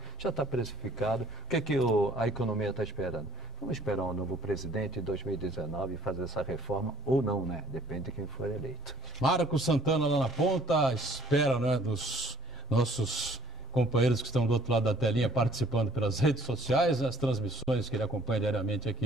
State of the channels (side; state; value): both; normal; correlation 0.61